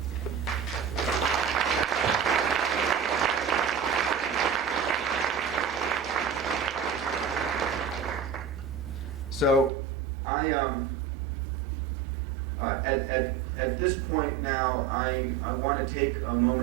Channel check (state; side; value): drops out; left; at 9.7 s